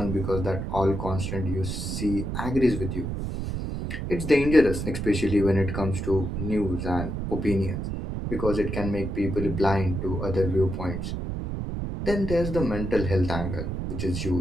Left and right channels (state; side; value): noise; right; rumble, 4 dB below the sound